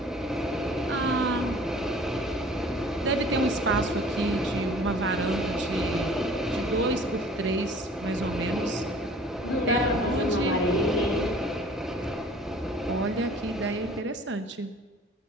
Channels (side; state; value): both; normal; correlation 0.49